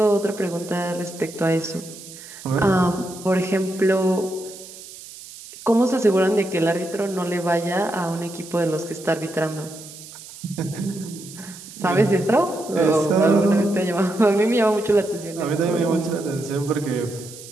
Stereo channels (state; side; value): noise; right; hiss, 16 dB below the sound